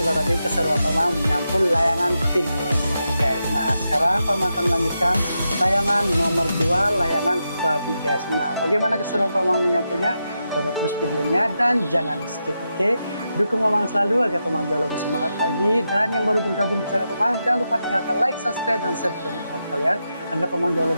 tadi keseruan Penggaris menyampul layangan Pingwin ya guys. Nah sekarang Penggaris akan melanjutkan layangan nomor 2, layangan babi guys. Nah bagaimana keseruan Penggaris menyampulnya? Tonton terus videonya dan jangan di skip, oke? Dukung Penggaris selalu agar Penggaris jauh lebih semangat lagi. Dan yang baru bergabung di channel Penggaris, jangan lupa tinggalkan like, subscribe, dan share ke teman-teman kalian agar Penggaris jauh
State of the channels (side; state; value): both; inverted; correlation -0.87